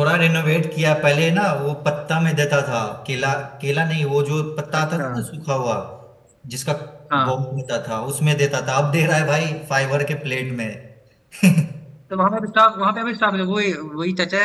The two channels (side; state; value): both; identical; correlation 1.00